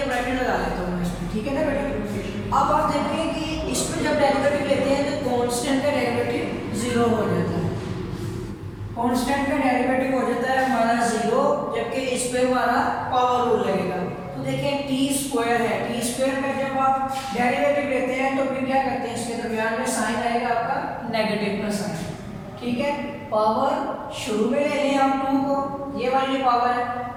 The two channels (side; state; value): both; identical; correlation 1.00